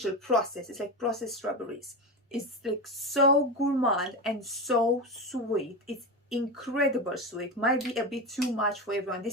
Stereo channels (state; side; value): normal; both; correlation 0.20